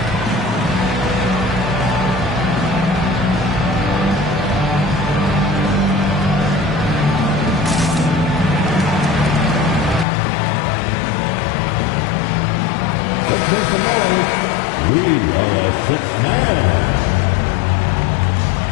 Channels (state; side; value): drops out; right; at 10.1 s